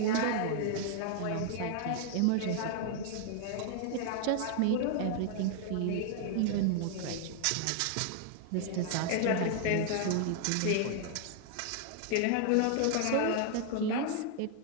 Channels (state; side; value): different; both; correlation 0.00